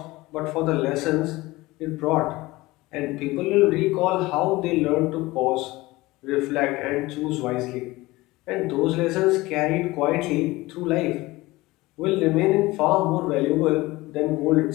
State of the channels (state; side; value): quieter; right; 20.1 dB